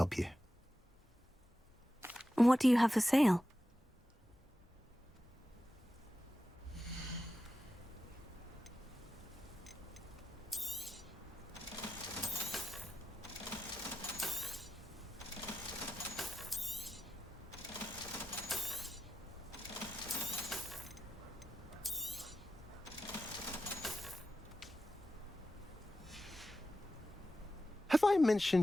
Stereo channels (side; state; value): both; normal; correlation 0.90